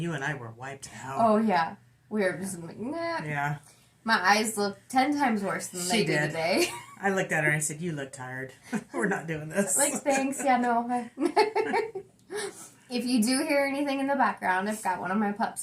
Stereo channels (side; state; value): both; identical; correlation 1.00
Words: and I were wiped out. Oh, yeah. We were just like, nah. Yeah. My eyes look 10 times worse than they did today. I looked at her and I said, you look tired. We're not doing this. Like, thanks. Yeah, no. If you do hear anything in the background, I've got one of my pups